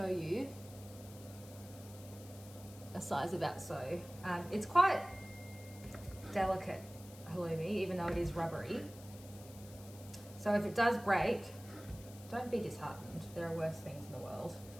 you a size about so. It's quite delicate halloumi, even though it is rubbery. So if it does break, don't be disheartened. There are worse things in the world.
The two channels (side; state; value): left; noise; hiss, 19 dB below the sound